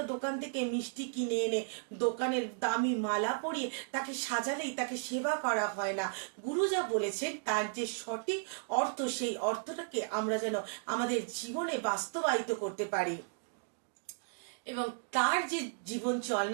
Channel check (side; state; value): left; silent; digital silence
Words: দোকান থেকে মিষ্টি কিনে এনে দোকানের দামি মালা পরিয়ে তাকে সাজালেই তাকে সেবা করা হয় না। গুরু যা বলেছেন তার যে সঠিক অর্থ, সেই অর্থটাকে আমরা যেন আমাদের জীবনে বাস্তবায়িত করতে পারি এবং তার যে জীবন